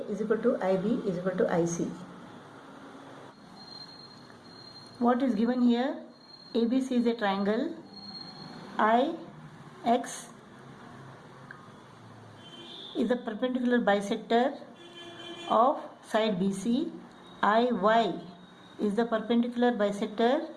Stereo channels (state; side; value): identical; both; correlation 1.00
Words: is equal to IB is equal to IC. What is given here? ABC is a triangle. IX is the perpendicular bisector of side BC. IY is the perpendicular bisector